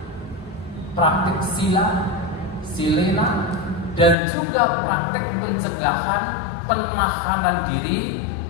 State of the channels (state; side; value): drops out; right; at 4.2 s